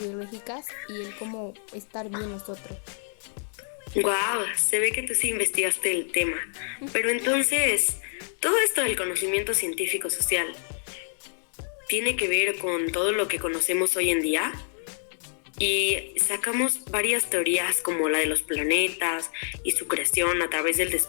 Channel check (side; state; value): right; silent; digital silence